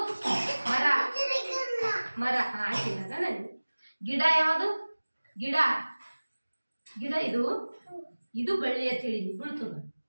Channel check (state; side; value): inverted; both; correlation -1.00